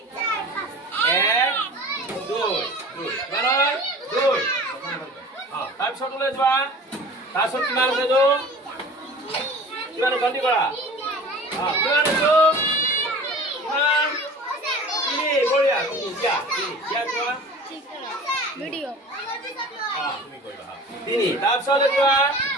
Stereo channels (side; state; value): both; normal; correlation 0.41